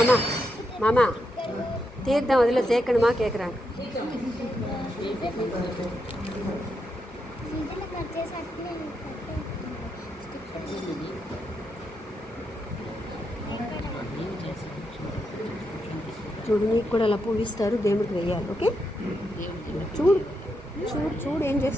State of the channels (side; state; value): both; normal; correlation 0.83